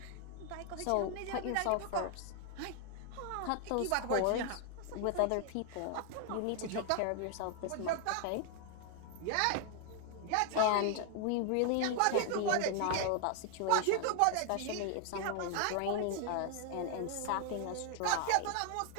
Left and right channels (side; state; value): both; different; correlation 0.00